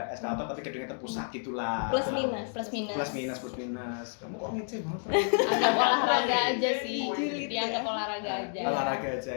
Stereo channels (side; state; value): right; silent; 58 dB below the other